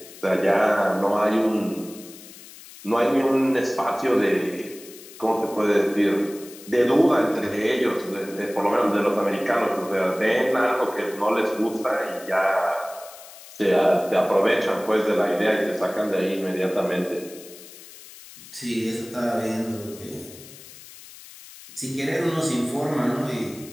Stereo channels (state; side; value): noise; left; hiss, 18 dB below the sound